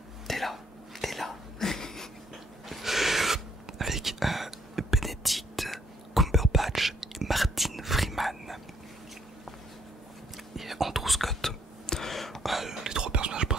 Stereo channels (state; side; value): normal; both; correlation 0.69